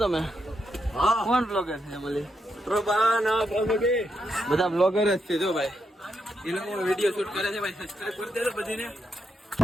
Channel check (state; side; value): normal; both; correlation 0.82